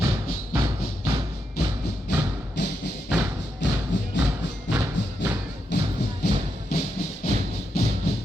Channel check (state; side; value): normal; both; correlation 0.83